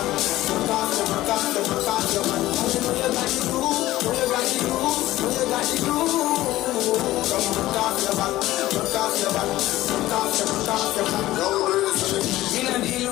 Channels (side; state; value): right; quieter; 16.0 dB